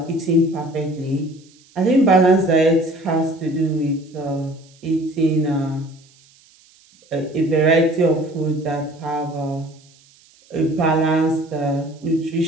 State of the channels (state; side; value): noise; right; hiss, 29 dB below the sound